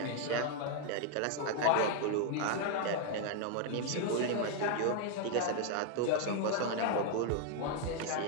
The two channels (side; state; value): both; different; correlation 0.00